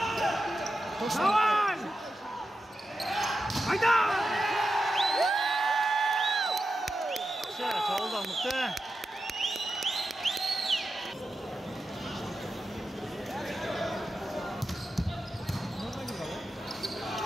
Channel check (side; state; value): both; normal; correlation 0.90